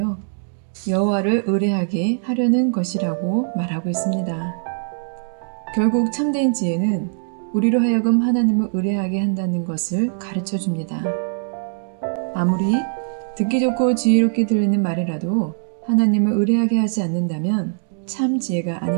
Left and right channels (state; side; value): silent; left; digital silence